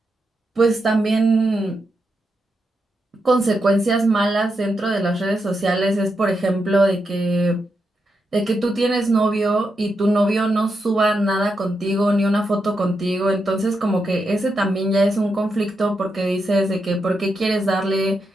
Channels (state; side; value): normal; both; correlation 0.84